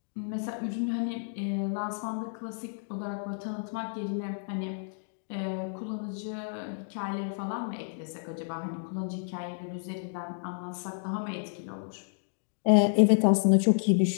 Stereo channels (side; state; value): right; silent; digital silence